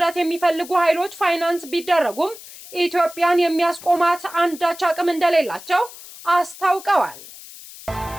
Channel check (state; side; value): noise; left; hiss, 17 dB below the sound